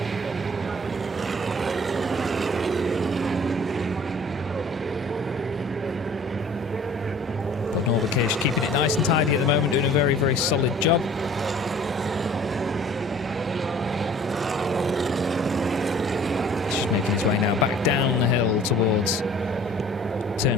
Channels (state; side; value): normal; both; correlation 0.50